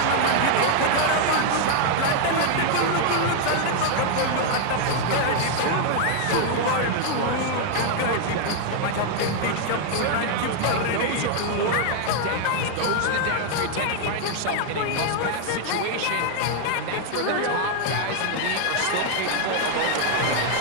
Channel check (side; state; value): both; different; correlation 0.00